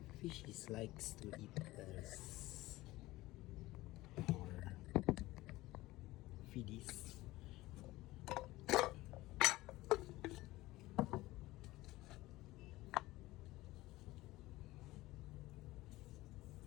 Fishies likes to eat this. Our feedies.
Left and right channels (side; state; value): right; quieter; 18.4 dB